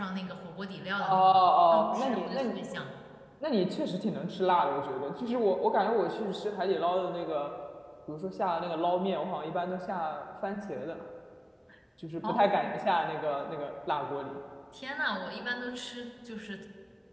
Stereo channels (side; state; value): both; identical; correlation 1.00